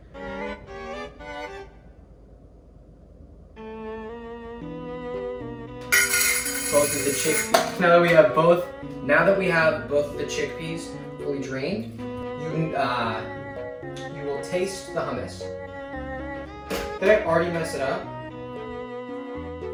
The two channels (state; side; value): identical; both; correlation 1.00